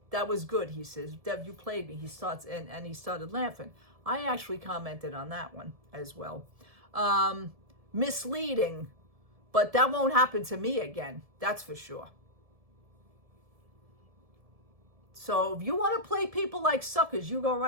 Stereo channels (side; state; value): left; late; 1.7 ms